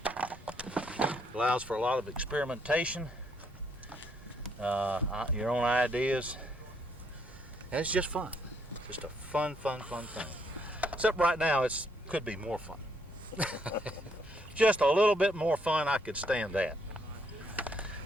Allows for a lot of experimentation, your own ideas, and it's just fun. Just a fun thing. Except right now, it could be more fun. Just a little bit more fun, I could stand that.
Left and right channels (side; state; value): both; normal; correlation 0.71